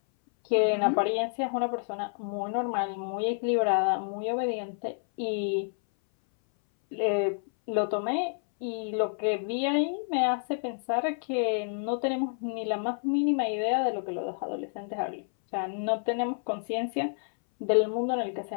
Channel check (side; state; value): right; silent; 59 dB below the other